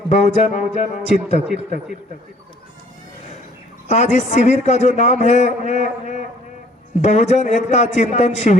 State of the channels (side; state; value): both; normal; correlation 0.57